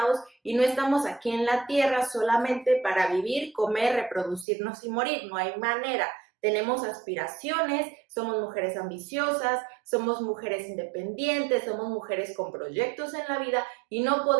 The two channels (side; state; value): left; drops out; at 4.5 s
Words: y no estamos aquí en la tierra solamente para vivir, comer, reproducirnos y morir. No hay manera. Tenemos aspiraciones, somos mujeres ambiciosas, somos mujeres independientes, somos mujeres con proyectos en la vida y no